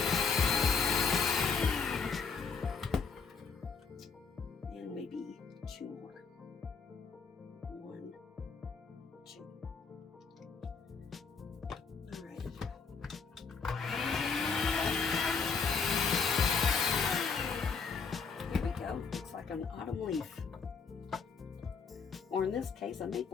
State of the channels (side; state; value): right; quieter; 5.4 dB